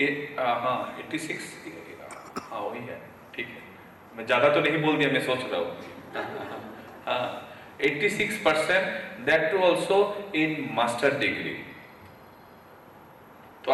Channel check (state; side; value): identical; both; correlation 1.00